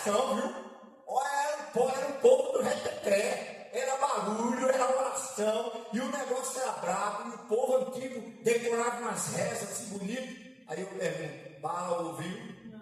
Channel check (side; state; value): both; identical; correlation 1.00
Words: viu? Era um povo do reteté, era barulho, era oração, e o negócio era bravo, e o povo antigo decorava umas rezas assim bonitas. Aí eu pergunto, Baal ouviu?